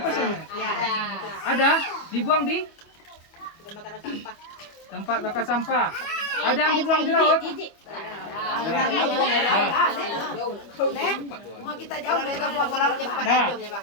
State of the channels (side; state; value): right; late; 25 ms